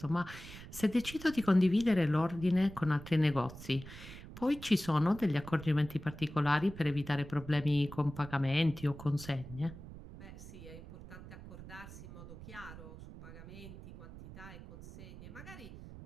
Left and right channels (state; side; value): noise; right; rumble, 14 dB below the sound